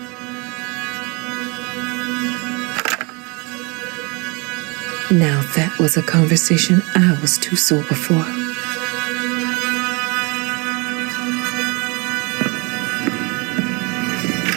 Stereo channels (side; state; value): left; quieter; 30.2 dB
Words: Now that was a conversation I was too sober for.